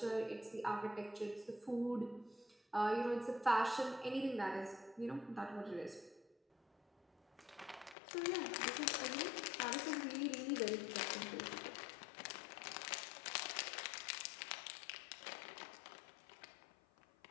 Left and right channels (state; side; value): drops out; right; at 8.0 s